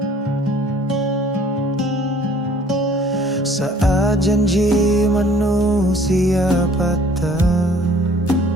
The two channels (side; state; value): both; normal; correlation 0.54